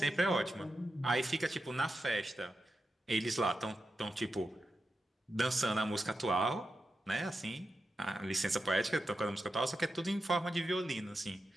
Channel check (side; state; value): both; normal; correlation 0.89